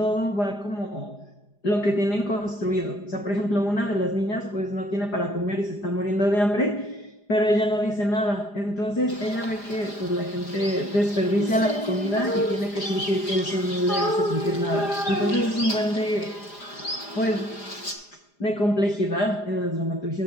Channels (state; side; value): late; right; 4.9 ms